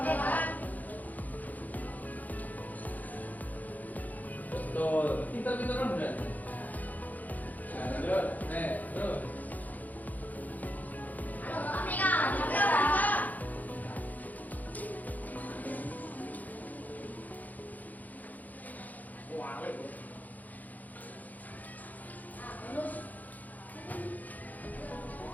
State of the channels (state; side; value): late; right; 0.080 ms